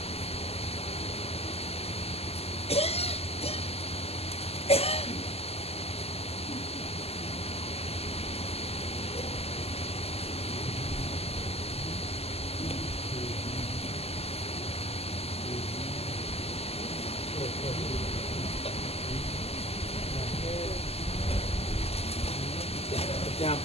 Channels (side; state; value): right; late; 0.29 ms